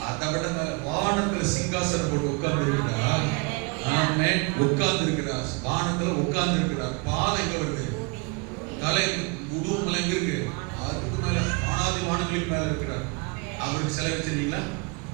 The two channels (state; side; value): quieter; left; 30.7 dB